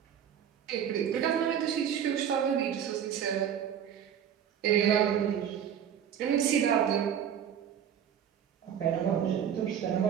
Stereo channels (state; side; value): quieter; left; 8.9 dB